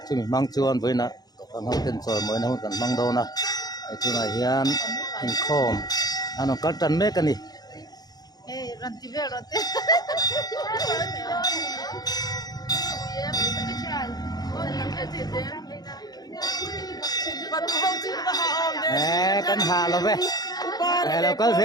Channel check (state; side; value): late; right; 0.19 ms